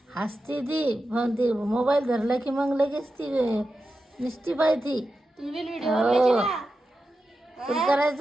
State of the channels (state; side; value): normal; both; correlation 0.91